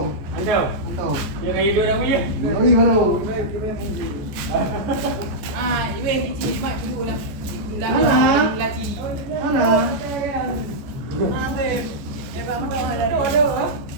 Ăn đâu? Ăn tôm. Giờ ngày đưa đâu biết? Nó đi vào đâu? À, bên chị mà chú là là chị. Nó là. Em vào đâu là đồ đâu á?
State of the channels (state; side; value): late; left; 14 ms